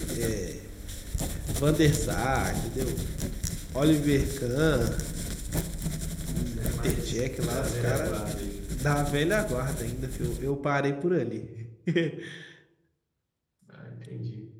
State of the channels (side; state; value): both; identical; correlation 1.00